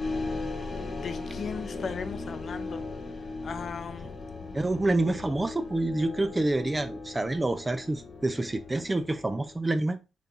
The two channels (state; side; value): normal; both; correlation 0.94